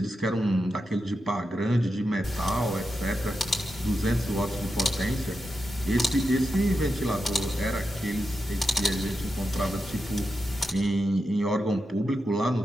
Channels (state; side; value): normal; both; correlation 0.88